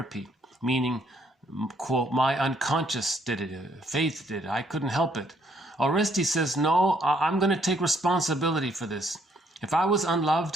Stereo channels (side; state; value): both; normal; correlation 0.68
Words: meaning, quote, my unconscious did it, faith did it, I couldn't help it. Orestes says, no, I'm going to take responsibility for this. If I was